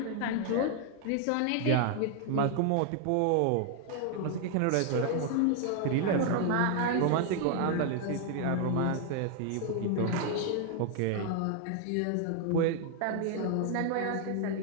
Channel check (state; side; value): different; both; correlation 0.00